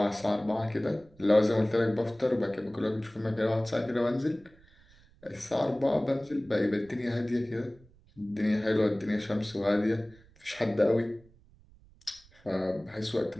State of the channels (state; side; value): noise; right; rumble, 27 dB below the sound